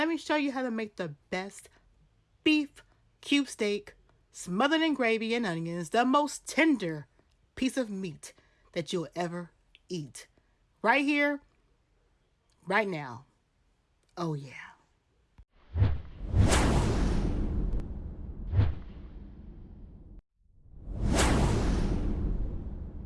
me show you how to make the best beef cube steak smothered in gravy and onions, the most tender piece of meat that you'll ever eat. Right here, right now. Oh yeah.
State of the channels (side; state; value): both; identical; correlation 1.00